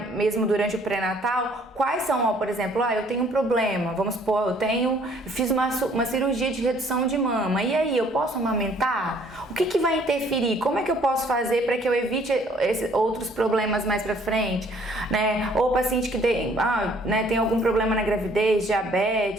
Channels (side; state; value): both; normal; correlation 0.60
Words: mesmo durante o pré-natal, quais são, por exemplo, eu tenho um problema, vamos supor, fiz uma cirurgia de redução de mama, e aí, eu posso amamentar? O que vai interferir? Como é que eu posso fazer para que eu evite outros problemas mais pra frente, Ou paciente que tem algum problema na gravidez,